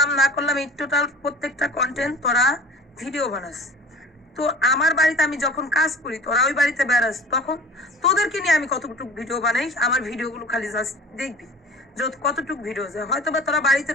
না করলাম এই টোটাল প্রত্যেকটা কন্টেন্ট তোরা ভিডিও বানাস। তো আমার বাড়িতে আমি যখন কাজ করি, তোরা ওই বাড়িতে বেড়াস, তখন তোদেরকে নিয়ে আমি কতটুকু ভিডিও বানাই, আমার ভিডিওগুলো খালি জাস্ট দেখবি যত কতটুক ভিডিও যায়। হয়তো বা তোরা বাড়িতে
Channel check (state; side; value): normal; both; correlation 0.43